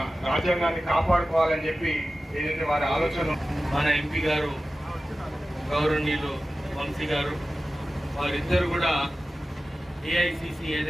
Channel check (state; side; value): normal; both; correlation 0.95